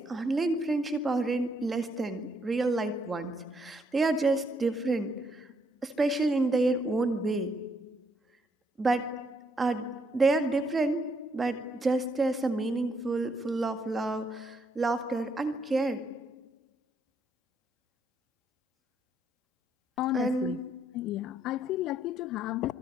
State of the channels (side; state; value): both; normal; correlation 0.73